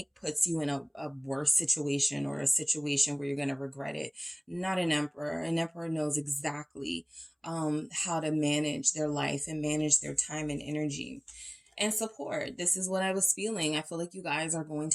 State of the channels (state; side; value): identical; both; correlation 1.00